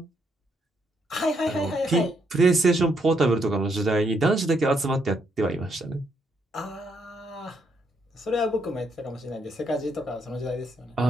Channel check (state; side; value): normal; both; correlation 0.75